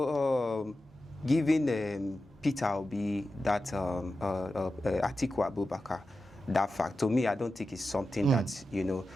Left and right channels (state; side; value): normal; both; correlation 0.92